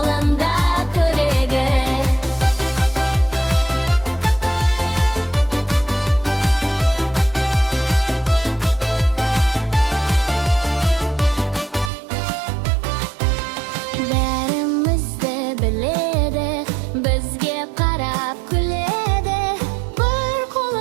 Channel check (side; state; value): left; drops out; at 11.9 s